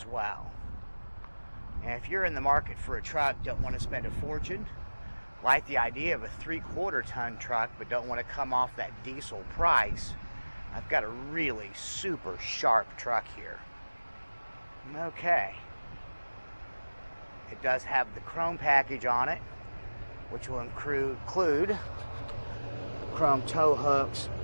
well. And if you're in the market for a truck, don't want to spend a fortune, like the idea of a 3/4 ton truck, but don't want to come off that diesel price, I've got a really super sharp truck here. Okay. It does have the chrome package on it, which will include chrome tow hooks,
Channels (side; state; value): both; inverted; correlation -1.00